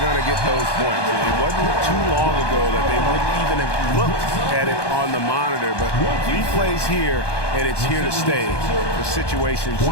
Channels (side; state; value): right; late; 1.2 ms